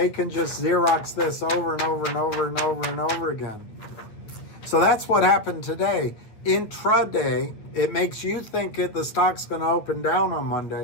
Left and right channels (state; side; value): late; right; 9.0 ms